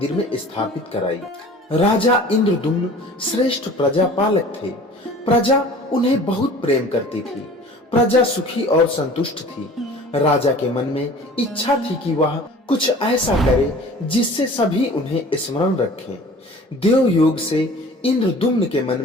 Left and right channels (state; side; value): normal; both; correlation 0.45